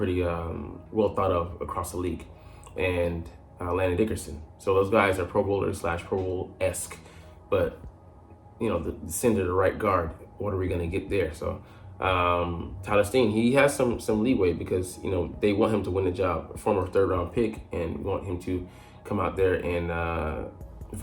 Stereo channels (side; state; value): both; identical; correlation 1.00